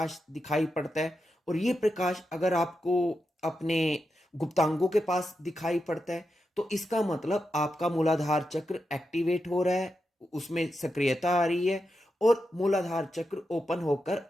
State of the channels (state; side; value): normal; both; correlation 0.88